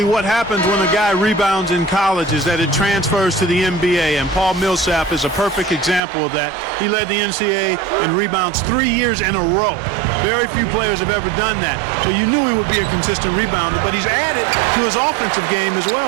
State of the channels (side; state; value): left; drops out; at 6.0 s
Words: what happens when a guy rebounds in college is that it transfers to the NBA, and Paul Millsap is a perfect example of that. He led the NCAA in rebounds 3 years in a row. Very few players have ever done that. So you knew he would be a consistent rebounder, but he's added to his offensive game as